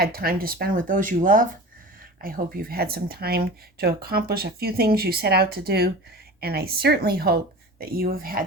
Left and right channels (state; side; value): normal; both; correlation 0.35